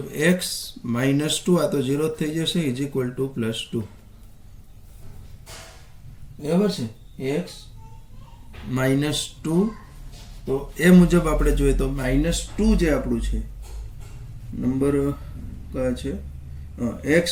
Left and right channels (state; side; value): identical; both; correlation 1.00